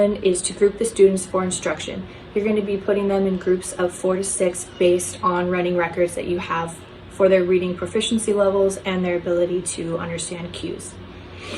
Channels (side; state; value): both; identical; correlation 1.00